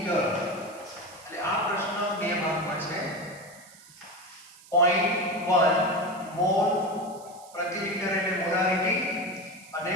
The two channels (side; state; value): right; noise; hiss, 22 dB below the sound